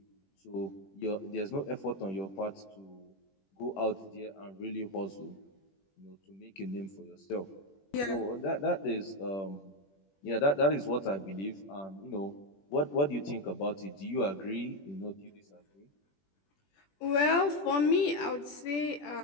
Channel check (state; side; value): late; right; 21 ms